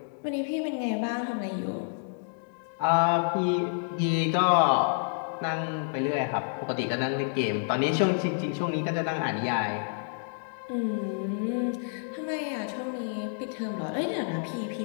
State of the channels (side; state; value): right; silent; digital silence